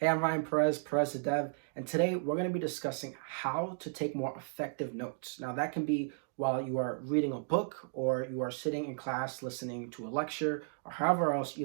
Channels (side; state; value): left; silent; digital silence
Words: Hey, I'm Ryan Perez, PerezTheDev, and today we're going to be discussing how to take more effective notes. Now, that can be while you are reading a book or you are sitting in class listening to a lecture or however else